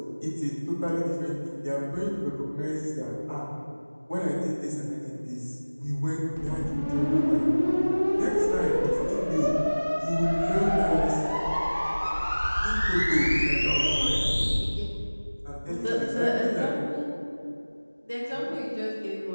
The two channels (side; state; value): both; inverted; correlation -1.00